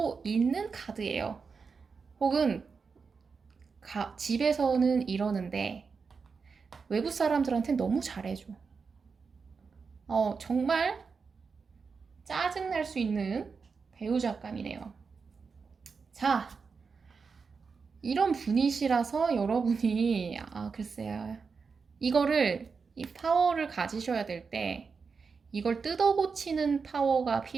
있는 카드예요. 혹은 집에서는 이러는데 외부 사람들한테 너무 잘해줘. 정말 짜증날 수 있는 배우자감이네요. 자, 이런 분이시라서 여러분이 글쎄요. 이 파워를 가지셔야 될 때 이걸 뜯어고치는 파워가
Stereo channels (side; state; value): left; quieter; 5.2 dB